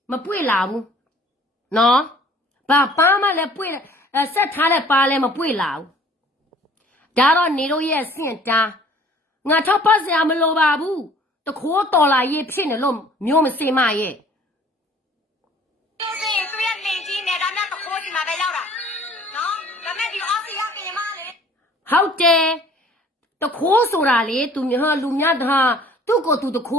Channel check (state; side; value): normal; both; correlation 0.53